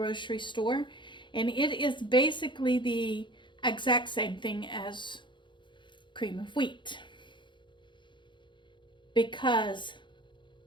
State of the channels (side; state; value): right; late; 0.23 ms